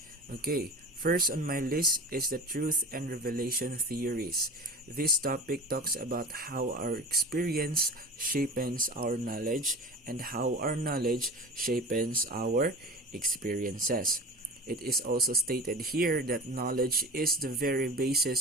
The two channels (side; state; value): both; normal; correlation 0.34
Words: Okay, first on my list is the truth and revelation theories. This topic talks about how our experience shapes our knowledge and how our knowledge shapes our experiences. It is also stated here that knowledge is the very